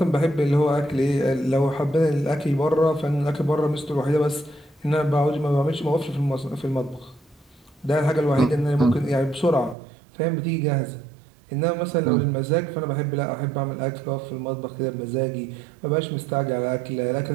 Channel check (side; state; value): left; drops out; at 9.8 s